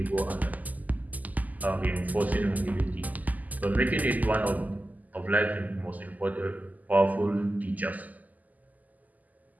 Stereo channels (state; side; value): late; left; 0.080 ms